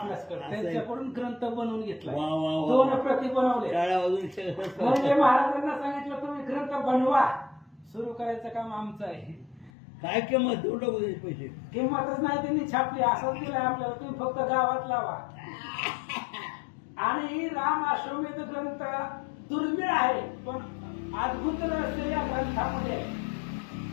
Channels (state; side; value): drops out; right; at 9.7 s